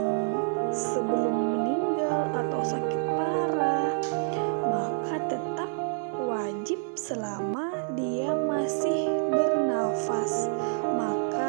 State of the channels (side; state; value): left; silent; digital silence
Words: sebelum meninggal atau sakit parah, maka tetap wajib selama dia masih bernafas,